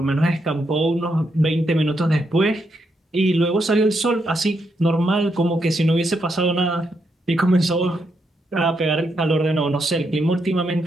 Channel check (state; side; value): normal; both; correlation 0.80